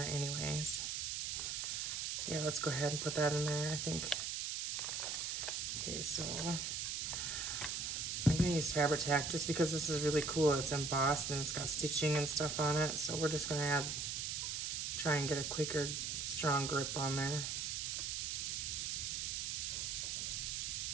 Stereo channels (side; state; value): right; noise; hiss, 1 dB below the sound